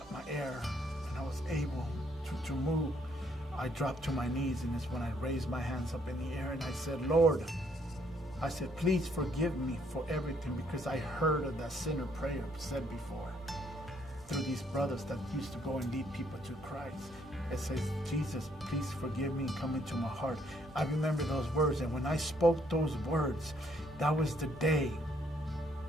my air and I was able to move, I dropped to my knees, and it's when I raised my hands up in the air and I said, Lord, I said, please forgive me for everything, because I heard of that sinner prayer said before through these brothers that used to go and lead people to Christ. It says, Jesus, please forgive me and come into my heart. I remember those words, and when I spoke those words, that was the day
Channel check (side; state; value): both; normal; correlation 0.69